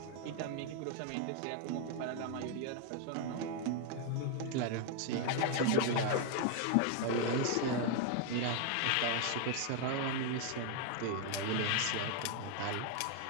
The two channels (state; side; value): different; both; correlation 0.00